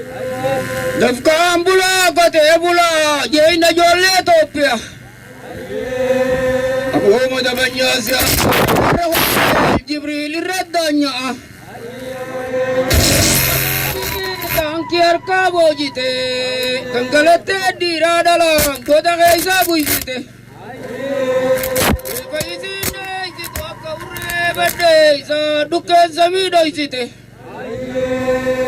dafkan bula kote bula jeyna jolle topia aku madabanya sia jibril radanya tangkiar kabojite tanggalate diradala kota kaisa buisite paisine itu akaure bade sa dukan samido isite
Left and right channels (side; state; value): both; identical; correlation 1.00